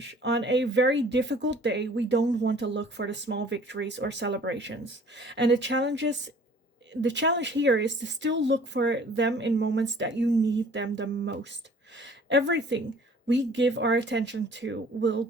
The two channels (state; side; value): normal; both; correlation 0.52